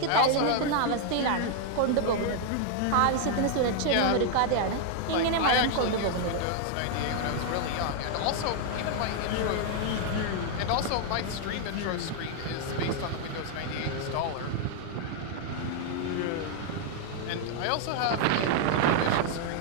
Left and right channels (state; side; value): different; both; correlation 0.00